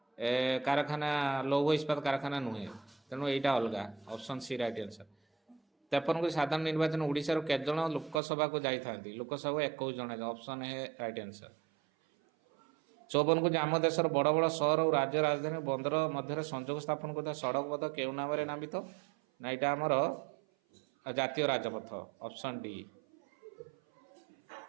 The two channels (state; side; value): drops out; left; at 8.2 s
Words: କାରଖାନା, ଲୌହ ଇସ୍ପାତ କାରଖାନା ନୁହେଁ, ତେଣୁ ଏଇଟା ଅଲଗା, ଅପସନ୍ ସି ରାଇଟ୍ ଆନ୍ସର। 53 ସାଧାରଣ ନିର୍ବାଚନ ଓଡ଼ିଶାରୁ କେତେଜଣ ଲୋକସଭାକୁ ଯାଇଥାନ୍ତି? ଲୋକସଭାକୁ 21 ଜଣ, ଅପସନ୍ ଏ ରାଇଟ୍ ଆନ୍ସର। 54 ଯେ ଆମ ଦେଶର ବଡ଼ ବଡ଼ ସହର ଓ ରାଜ୍ୟ ରାଜଧାନୀ ବନ୍ଦର ମଧ୍ୟରେ ସଂଯୋଗ ସ୍ଥାପନ କରୁଥିବା ସଡ଼କ ପଥ କେଉଁ ନାମରେ ନାମିତ? ନା ଏଇଟା ଆମର ଜାତୀୟ ରାଜପଥ, ଅପସନ୍ ଡି।